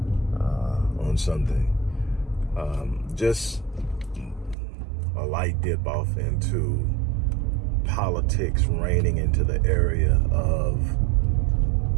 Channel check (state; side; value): drops out; left; at 4.5 s